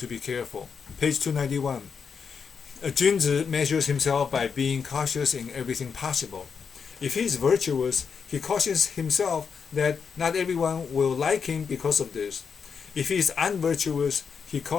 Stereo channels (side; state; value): right; quieter; 6.2 dB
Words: be careful. Page 291. A Junzi measures himself by being cautious in everything possible. If he is virtuous, he cautions himself that not everyone will like him because of this. If he is unvirtuous, he